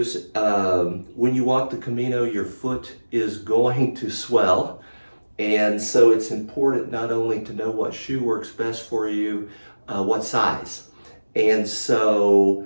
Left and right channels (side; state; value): both; inverted; correlation -1.00